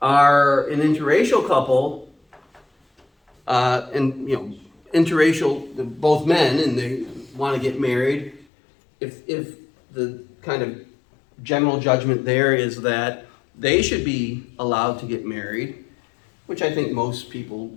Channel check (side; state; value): right; drops out; at 8.5 s